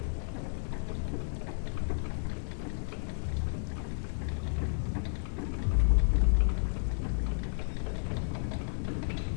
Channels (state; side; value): silent; right; digital silence